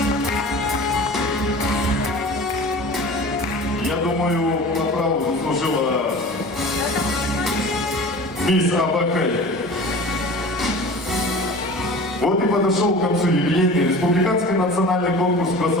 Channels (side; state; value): both; normal; correlation 0.38